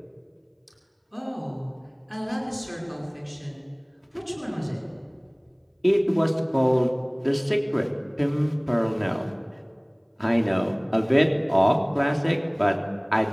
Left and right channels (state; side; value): identical; both; correlation 1.00